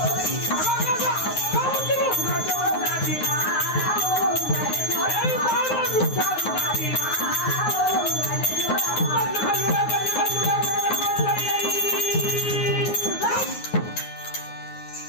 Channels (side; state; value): right; late; 9.6 ms